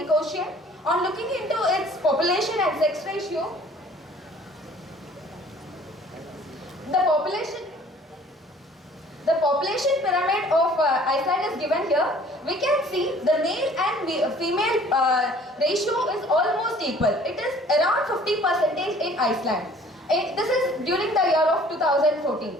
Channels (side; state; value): both; normal; correlation 0.53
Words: Ocean. On looking into its population and sex ratio, the population pyramid of Iceland is given here. We can see the male and female ratio is almost equal. It is around 50% in Iceland. This is during the year of 2014.